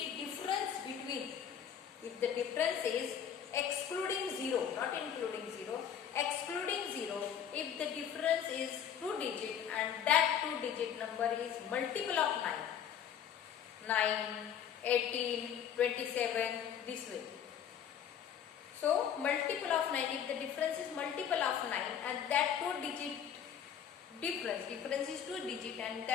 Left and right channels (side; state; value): right; quieter; 8.7 dB